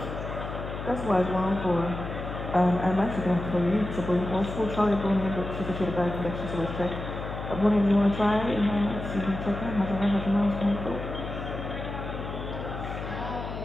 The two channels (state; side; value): noise; left; hum, 7 dB below the sound